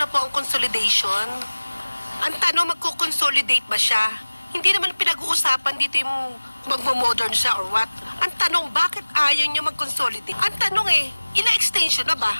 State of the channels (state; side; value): inverted; both; correlation -1.00